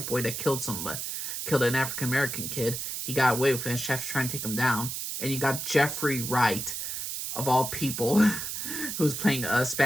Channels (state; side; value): noise; right; hiss, 4 dB below the sound